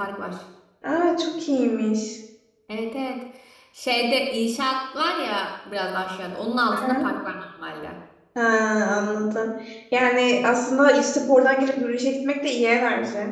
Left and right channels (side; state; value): both; identical; correlation 1.00